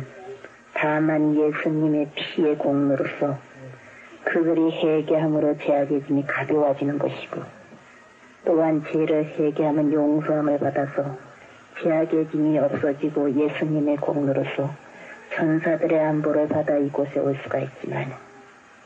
다만 예수님의 피의 공로로서 그들이 회개함으로 죄악의 짐이 가벼워지는 것이고 또한 죄를 회개하면 용서함을 받아서 죄악의 짐이 없어지고 예수님의 공로로서 천사들의 안보를 받아 이곳에 올 수가 있지만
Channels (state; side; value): identical; both; correlation 1.00